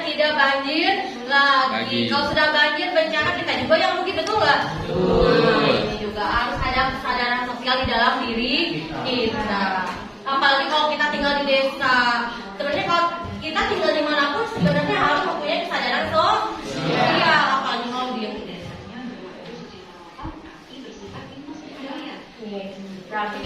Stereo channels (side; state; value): both; identical; correlation 1.00